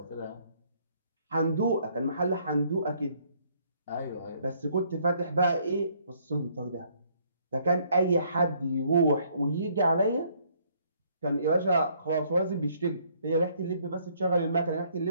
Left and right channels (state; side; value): inverted; both; correlation -0.66